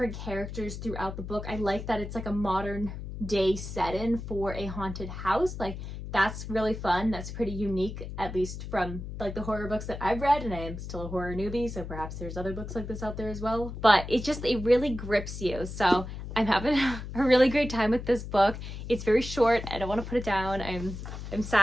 characters throughout the book. I like that it's like a modern day setting for a haunted house. Like, that's really fun. That's pretty unique, at least from like the horror books that I've read, and I am still a horror newbie, so perhaps there's other books like this out there as well. But it really grips you. So I'm having a really great time with this book. It's very short. I don't want to put it down. I'm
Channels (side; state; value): left; noise; hum, 8 dB below the sound